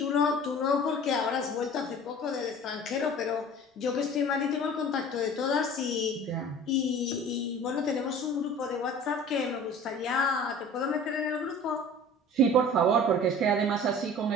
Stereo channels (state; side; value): normal; both; correlation 0.43